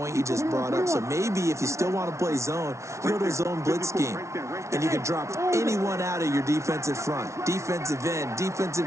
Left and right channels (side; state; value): left; late; 0.14 ms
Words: you just brought up. So maybe if you still want to play zone, you go to a zone blitz scheme, and you can drop anyone out of your defensive front, defensive end,